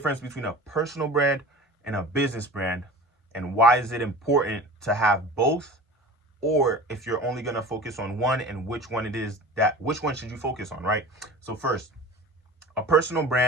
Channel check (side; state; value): both; normal; correlation 0.38